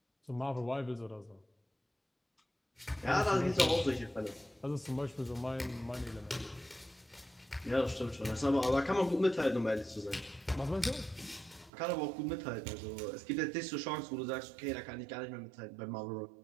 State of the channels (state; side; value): drops out; left; at 11.7 s